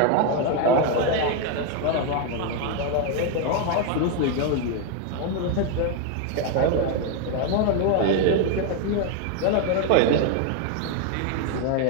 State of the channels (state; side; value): different; both; correlation 0.01